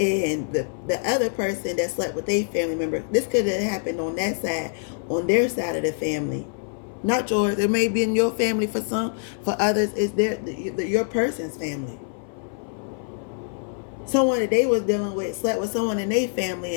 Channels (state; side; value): silent; right; 58 dB below the other